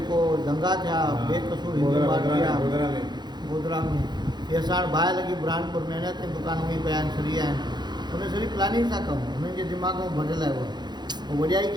दंगा थिया बेकसूर गोधरा में, इहे असां वटि बाहि लॻी बुरहानपुर में अञा ताईं दुकानूं ई पिया आहिनि, सड़ी आहिनि। उन सॼी प्लानिंग सां कमु हुननि जे दिमाग़ में भरियल आहे। उहो वॾियाई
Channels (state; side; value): late; left; 0.21 ms